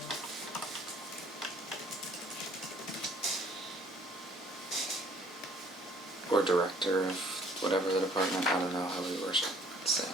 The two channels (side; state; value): both; normal; correlation 0.57